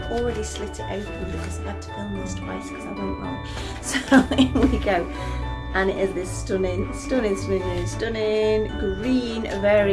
already slit it open because I had to film this twice because I went wrong. So here we go. And it is this stunning green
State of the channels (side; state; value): both; identical; correlation 1.00